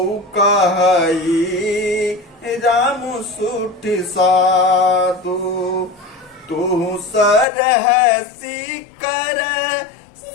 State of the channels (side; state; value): right; drops out; at 7.5 s